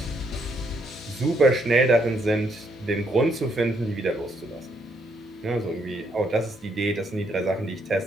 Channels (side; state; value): both; normal; correlation 0.73